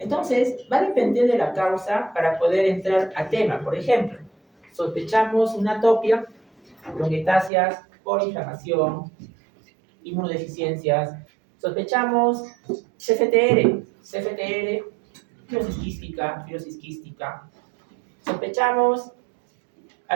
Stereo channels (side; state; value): left; drops out; at 7.5 s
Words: va a depender de la causa para poder entrar al tema. Por ejemplo, sospechamos una atopia, bronquiectasias por inflamación, inmunodeficiencias. Sospechamos CFTR, fibrosis quística. Sospechamos